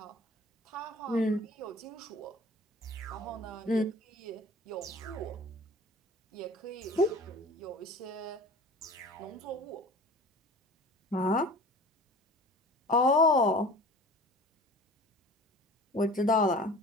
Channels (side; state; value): both; normal; correlation 0.43